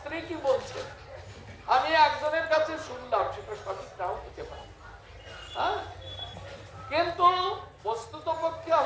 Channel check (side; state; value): both; identical; correlation 1.00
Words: কি বলছে আমি একজনের কাছে শুনলাম, সেটা সঠিক নাও হতে পারে, হ্যাঁ, কিন্তু বস্তুত পক্ষে